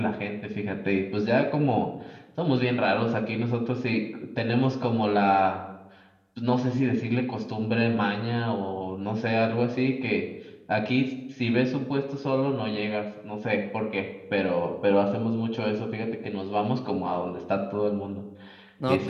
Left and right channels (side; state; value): both; identical; correlation 1.00